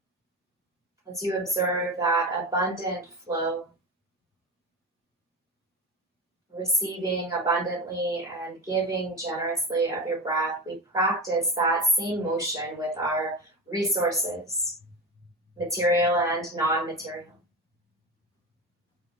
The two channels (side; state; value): both; normal; correlation 0.24